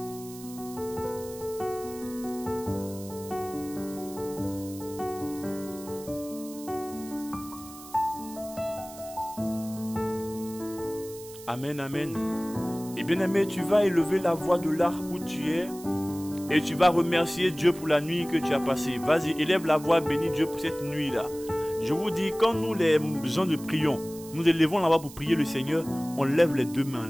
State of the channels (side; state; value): right; noise; hiss, 17 dB below the sound